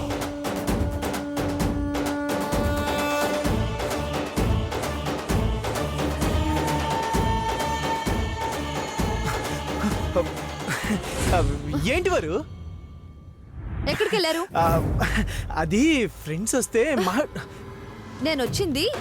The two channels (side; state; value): both; identical; correlation 1.00